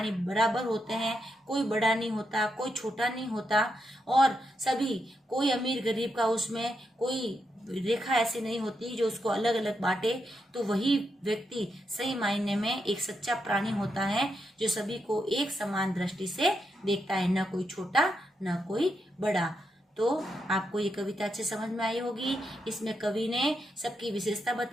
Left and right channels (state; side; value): normal; both; correlation 0.83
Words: बराबर होते हैं, कोई बड़ा नहीं होता, कोई छोटा नहीं होता, और सभी, कोई अमीर गरीब का उसमें कोई रेखा ऐसी नहीं होती जो उसको अलग अलग बांटे, तो वही व्यक्ति सही मायने में एक सच्चा प्राणी होता है, जो सभी को एक समान दृष्टि से देखता है, न कोई छोटा न कोई बड़ा। तो आपको ये कविता अच्छे समझ में आई होगी। इसमें कवि ने सबकी विशेषता